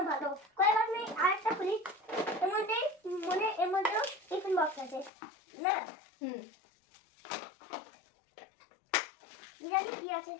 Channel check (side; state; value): right; drops out; at 5.1 s